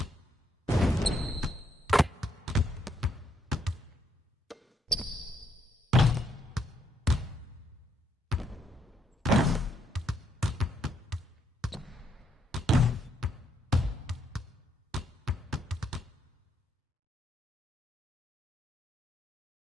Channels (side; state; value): both; normal; correlation 0.74